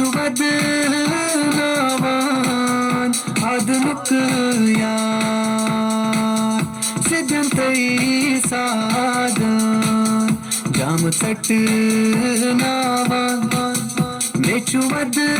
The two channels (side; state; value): both; identical; correlation 1.00